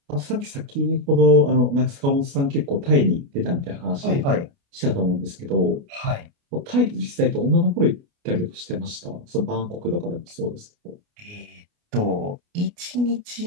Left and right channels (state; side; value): late; left; 29 ms